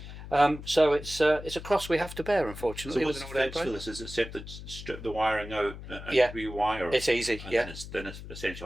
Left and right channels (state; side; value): noise; left; hum, 12 dB below the sound